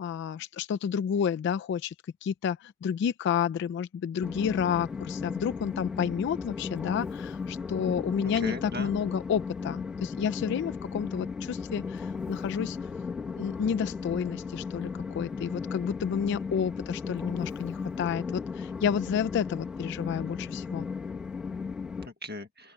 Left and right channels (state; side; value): quieter; right; 6.7 dB